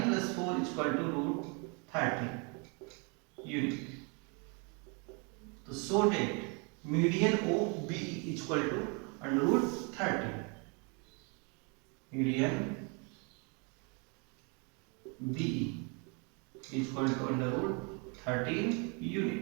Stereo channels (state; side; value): quieter; left; 33.5 dB